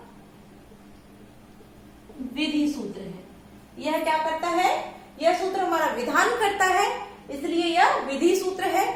विधि सूत्र है। यह क्या करता है, यह सूत्र हमारा विधान करता है, इसलिए यह विधि सूत्र है।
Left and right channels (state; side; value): identical; both; correlation 1.00